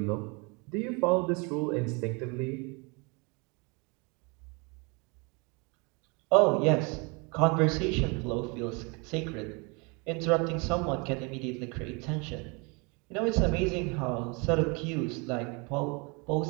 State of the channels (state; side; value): quieter; left; 30.7 dB